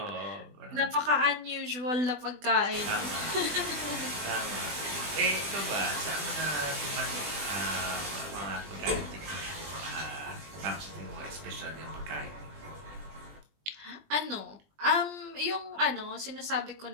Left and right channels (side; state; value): left; late; 20 ms